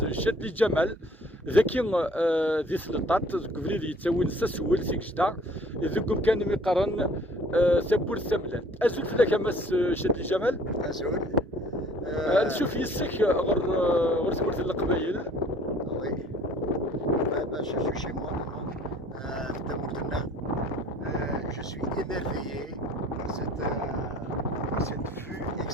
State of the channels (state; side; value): normal; both; correlation 0.54